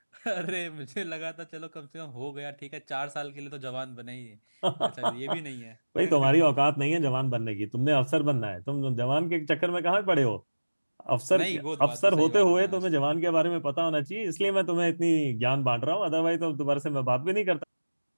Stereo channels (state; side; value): inverted; both; correlation -1.00